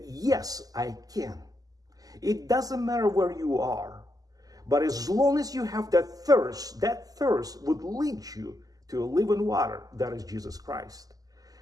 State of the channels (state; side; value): late; left; 0.17 ms